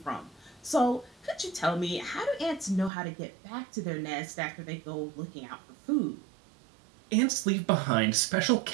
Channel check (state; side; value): drops out; left; at 2.9 s